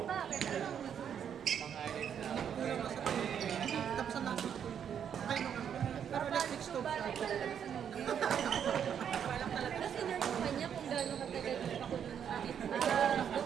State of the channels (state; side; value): quieter; left; 8.4 dB